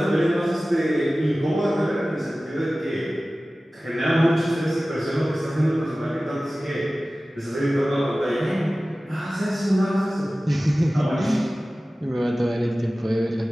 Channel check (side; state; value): both; normal; correlation 0.97